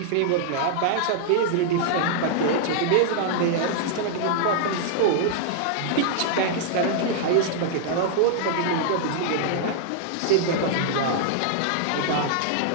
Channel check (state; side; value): different; both; correlation -0.01